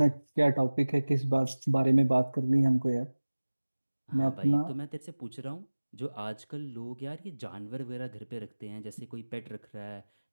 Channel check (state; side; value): inverted; both; correlation -1.00